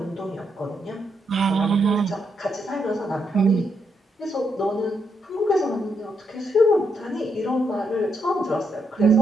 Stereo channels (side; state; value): both; normal; correlation 0.79